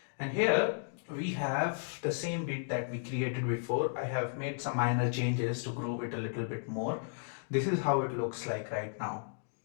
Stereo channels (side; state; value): right; silent; digital silence